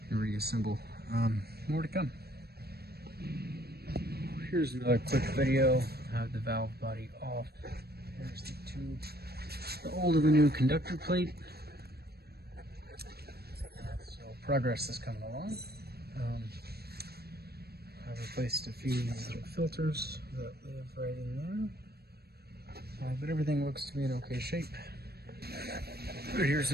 and reassemble. More to come. Here's another quick video. I have the valve body off. Here's the tube, the old and the new conductor plate. So progress is coming along. I've replaced a few little filters that live right in there. But everything looks to be in okay shape. Here's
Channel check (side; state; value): left; late; 0.46 ms